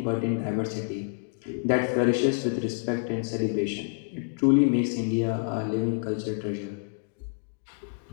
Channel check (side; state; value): right; silent; digital silence